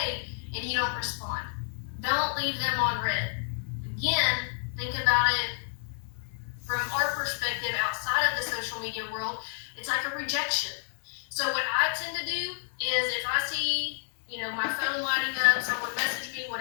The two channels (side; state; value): right; silent; digital silence